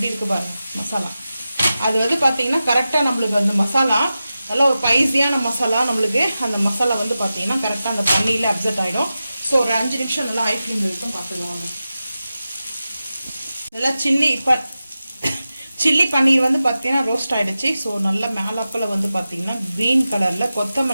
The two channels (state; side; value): inverted; both; correlation -0.93